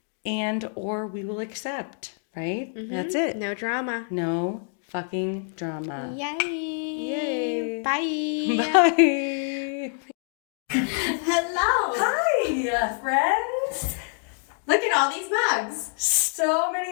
or we will accept, right? Mm-hmm. That's it. No drama. No fucking drama. Yay. Yay. Bye. Bye. Hello. Hi, friends. Look at all these mugs. So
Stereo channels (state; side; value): silent; right; 61 dB below the other